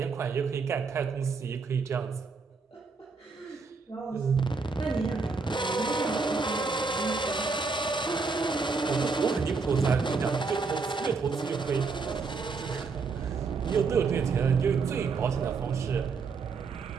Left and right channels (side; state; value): left; quieter; 4.6 dB